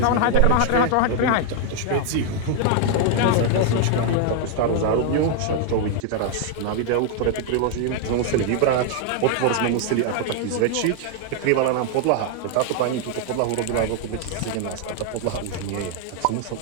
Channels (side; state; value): both; different; correlation 0.00